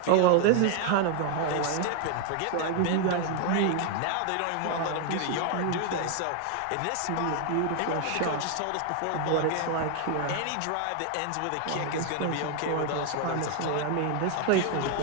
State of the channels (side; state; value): both; different; correlation 0.00